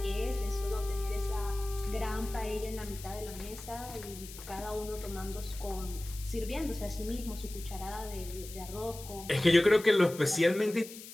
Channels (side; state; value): left; noise; hiss, 14 dB below the sound